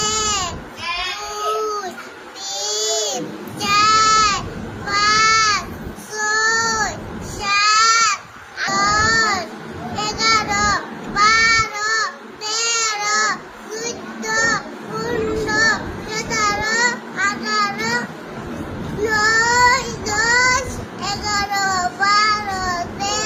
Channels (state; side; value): identical; both; correlation 1.00